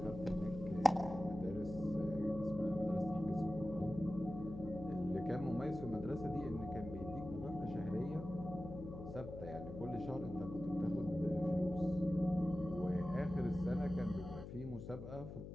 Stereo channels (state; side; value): noise; left; hum, 9 dB below the sound